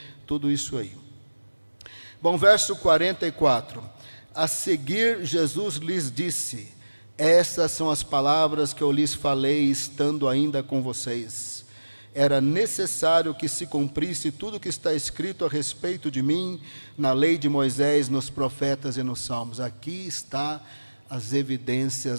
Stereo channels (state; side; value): inverted; both; correlation -1.00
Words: tudo isso aí. Bom, verso 44. A seguir, Jesus lhes disse, essas são as palavras que eu lhes falei, estando ainda com vocês. era necessário que se cumprisse tudo o que está escrito a respeito de mim na lei de Moisés, nos profetas e nos salmos. Aqui está as